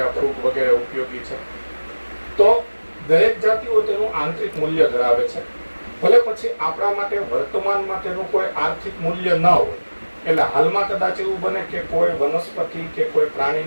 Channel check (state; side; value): inverted; both; correlation -1.00